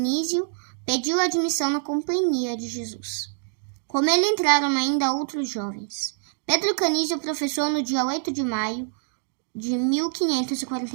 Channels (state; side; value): silent; left; digital silence